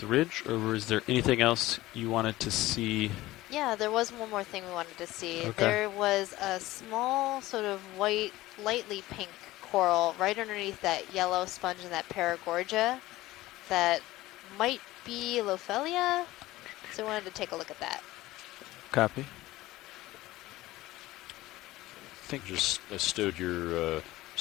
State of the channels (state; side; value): quieter; right; 17.4 dB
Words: ridge. Or is there anything else you wanted to see? Yeah, there was one more thing we wanted to see. Okay. There was a small sort of white, lightly pink coral right underneath that yellow sponge and that paragorgia that might be Lophelia. So we wanted to take a look at that. Copy. Think just stowed your